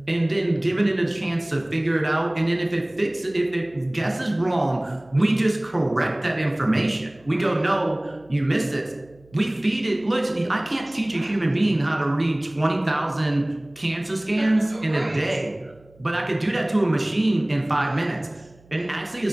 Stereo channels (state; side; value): noise; right; hum, 28 dB below the sound